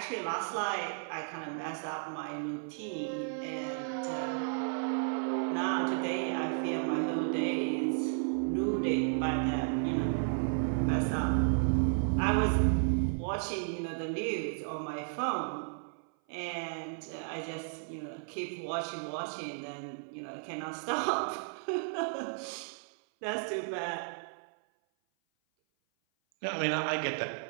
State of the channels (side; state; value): left; silent; 55 dB below the other